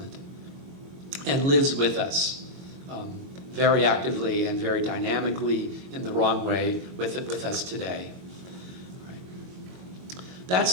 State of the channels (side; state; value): left; late; 22 ms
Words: and lives with us very actively and very dynamically in the wrong way with us today. Right.